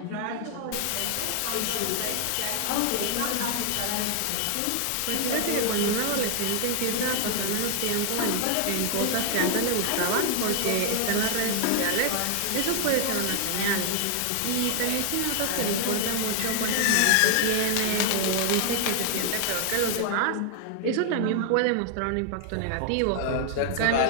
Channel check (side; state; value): both; different; correlation 0.00